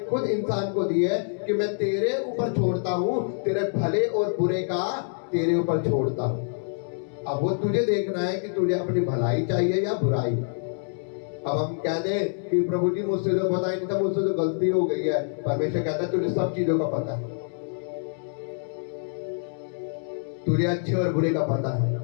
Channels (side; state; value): right; silent; 61 dB below the other